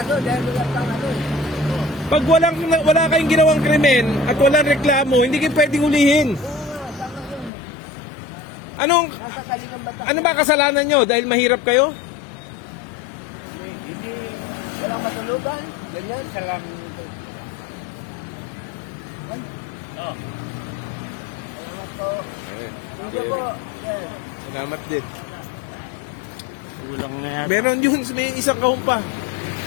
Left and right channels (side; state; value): right; drops out; at 7.5 s